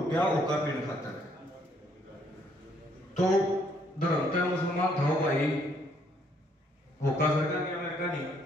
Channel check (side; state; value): both; normal; correlation 0.68